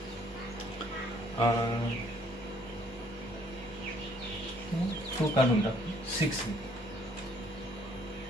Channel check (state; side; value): normal; both; correlation 0.62